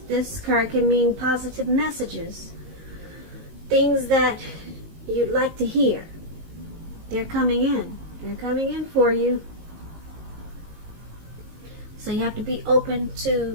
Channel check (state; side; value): late; left; 19 ms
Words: this card can mean positive messages. Things that you'd like to hear. They're coming in. They're coming in for you. So you have to be open